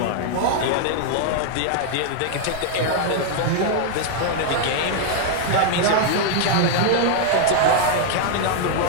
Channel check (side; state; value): both; different; correlation 0.00